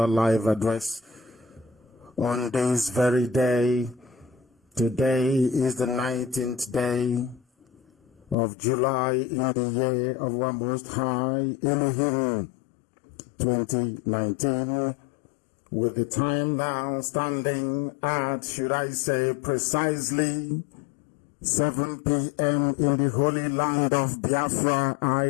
live address on this very day. Today is the 19th day of July in the year of our Most High Elohim 2019, with the time now standing at, should I say, precisely 7 p.m. in the holy land of Biafra.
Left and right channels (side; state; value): right; drops out; at 8.3 s